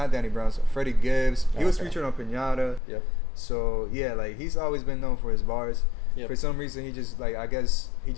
Danny Brown's, Freddie Gibbs. He was featured on Pinata. Yep. So yeah, like he's always been known for his bars. Yep. For some reason, he just I guess he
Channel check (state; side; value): drops out; right; at 2.8 s